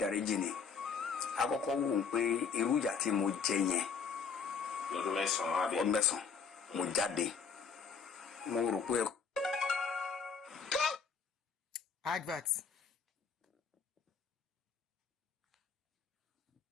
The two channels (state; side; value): quieter; right; 5.9 dB